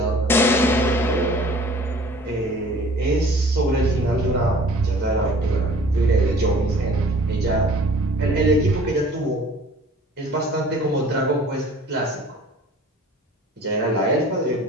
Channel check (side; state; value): both; normal; correlation 0.49